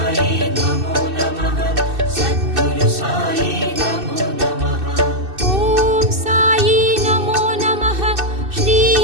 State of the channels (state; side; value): late; left; 2.6 ms